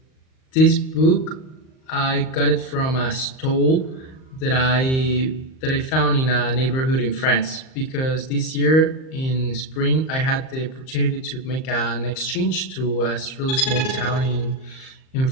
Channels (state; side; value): late; right; 38 ms